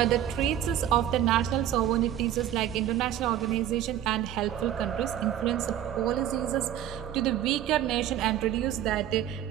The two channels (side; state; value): left; quieter; 11.3 dB